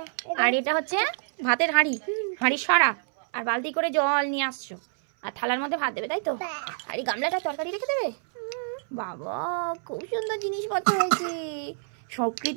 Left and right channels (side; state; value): left; silent; 60 dB below the other